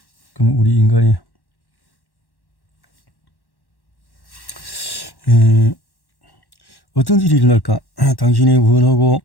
그럼 우리 인간이 어떤 일이 일어날까? 당신이 원하고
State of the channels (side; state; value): right; late; 1.1 ms